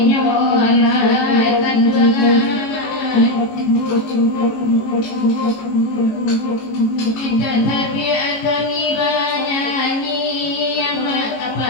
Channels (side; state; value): right; late; 18 ms